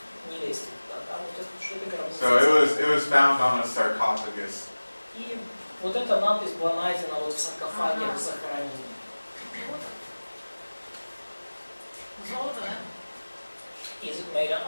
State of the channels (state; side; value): inverted; both; correlation -1.00